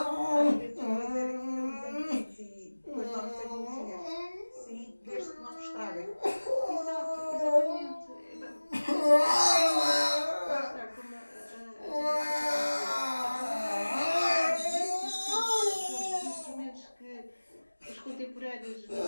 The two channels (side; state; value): both; inverted; correlation -1.00